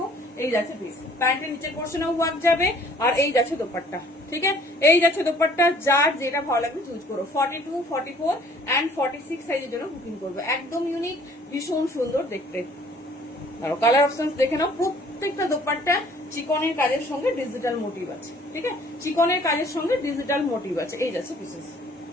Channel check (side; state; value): both; normal; correlation 0.56